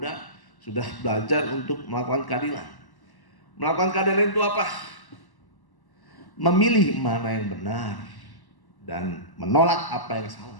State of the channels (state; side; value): late; right; 1.1 ms